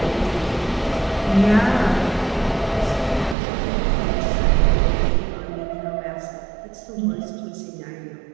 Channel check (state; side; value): drops out; left; at 3.4 s